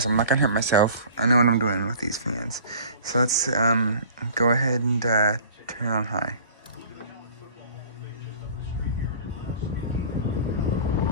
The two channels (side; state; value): both; inverted; correlation -0.45